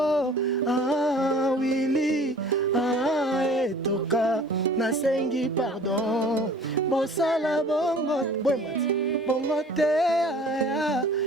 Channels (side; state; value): both; normal; correlation 0.48